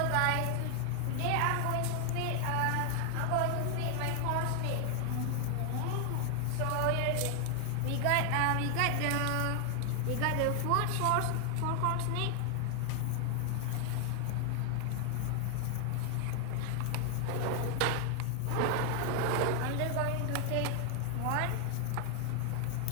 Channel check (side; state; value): both; different; correlation 0.00